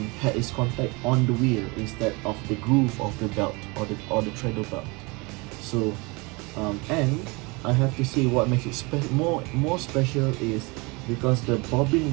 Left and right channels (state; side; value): quieter; left; 27.1 dB